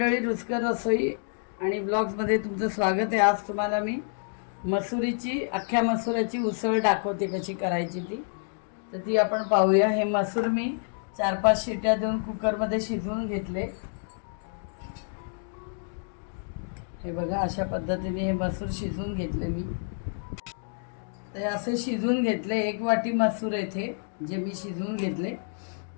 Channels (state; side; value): silent; right; digital silence